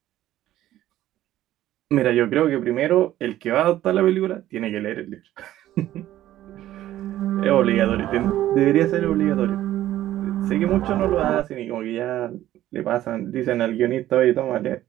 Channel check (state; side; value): quieter; left; 13.6 dB